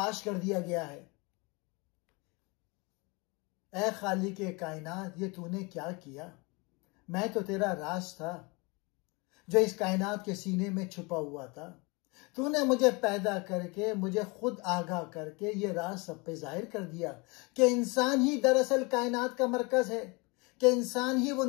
کر دیا گیا ہے۔ اے خالق کائنات، یہ تو نے کیا کیا، میں تو تیرا راز تھا جو اس کائنات کے سینے میں چھپا ہوا تھا۔ تو نے مجھے پیدا کر کے، مجھے خود آگاہ کر کے یہ راز سب پہ ظاہر کر دیا کہ انسان ہی دراصل کائنات کا مرکز ہے، کہ انسان ہی وہ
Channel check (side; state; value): right; quieter; 27.7 dB